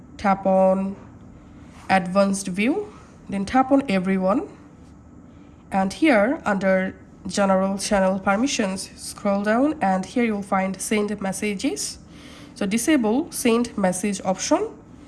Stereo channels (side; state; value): both; identical; correlation 1.00